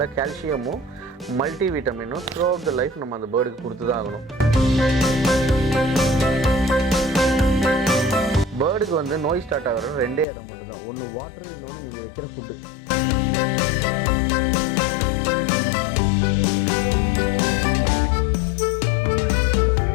கால்சியமும் மல்டி விட்டமினும் த்ரூ அவுட் த லைஃப் நம்ம அந்த பேர்டுக்கு கொடுத்து தான் ஆகணும். பேர்டுக்கு வந்து நோய் ஸ்டார்ட் ஆகிற 2 இடம் மட்டும்தான். ஒன்று வாட்டர், இன்னொன்று நீங்கள் வைக்கிற ஃபுட்டு.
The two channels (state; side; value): drops out; right; at 10.2 s